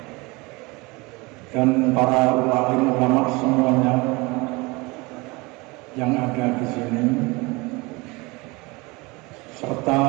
dan para ulama semuanya yang ada di sini, serta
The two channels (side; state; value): left; quieter; 25.0 dB